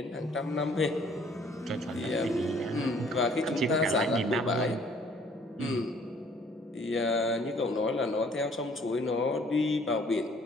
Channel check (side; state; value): both; normal; correlation 0.59